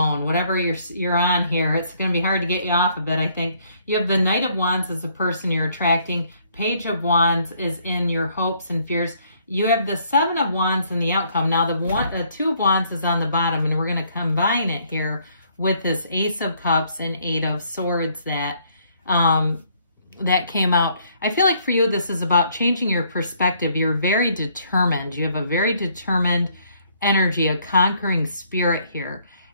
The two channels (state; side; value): inverted; both; correlation -0.66